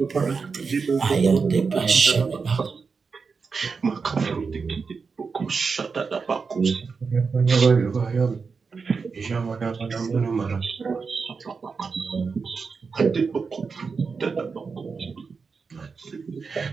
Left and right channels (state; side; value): quieter; left; 5.1 dB